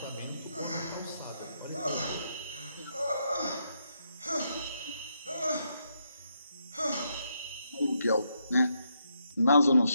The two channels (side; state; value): both; inverted; correlation -0.79